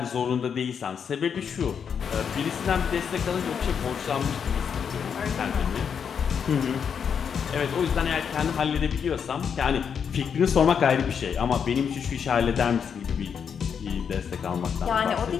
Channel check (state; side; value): quieter; right; 7.1 dB